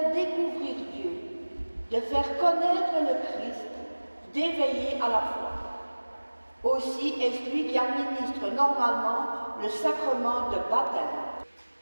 découvrir Dieu, de faire connaître le Christ, d'éveiller à la foi. Aussi est-ce lui qui administre normalement le sacrement de baptême.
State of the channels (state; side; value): inverted; both; correlation -1.00